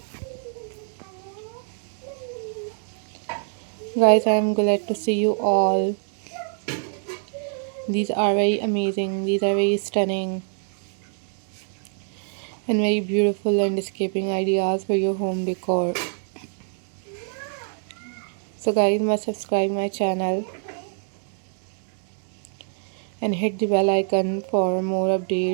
Guys, I am glad to see you all. These are very amazing, these are very stunning and very beautiful landscaping ideas for your home decor. So guys, must subscribe my channel and hit the bell icon for more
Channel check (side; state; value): left; silent; 56 dB below the other